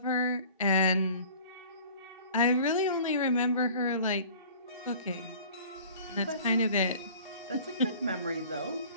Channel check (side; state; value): both; inverted; correlation -0.47